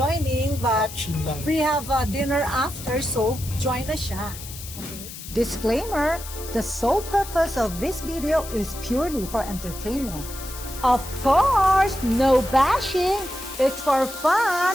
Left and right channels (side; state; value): left; noise; hiss, 12 dB below the sound